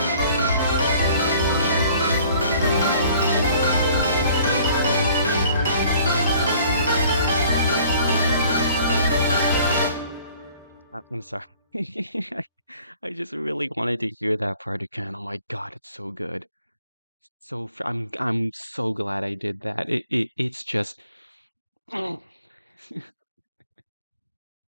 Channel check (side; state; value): both; inverted; correlation -0.55